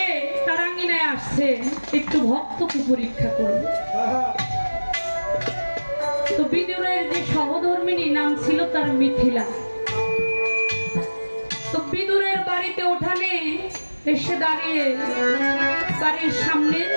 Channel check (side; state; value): both; inverted; correlation -1.00